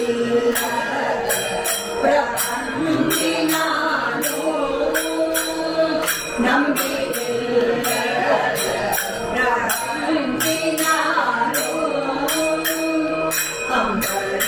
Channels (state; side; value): identical; both; correlation 1.00